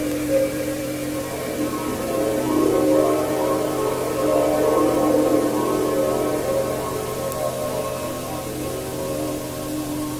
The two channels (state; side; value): identical; both; correlation 1.00